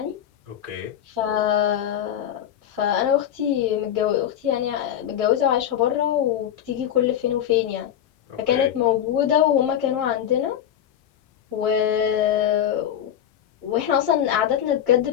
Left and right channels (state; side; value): quieter; right; 10.3 dB